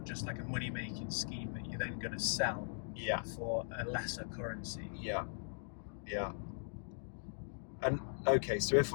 just like a money making scheme that you're then going to sell for a lesser currency. Yeah. And okay, so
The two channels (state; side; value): silent; right; digital silence